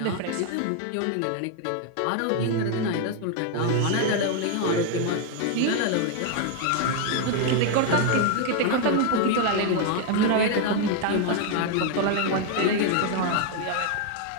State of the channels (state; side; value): different; both; correlation 0.00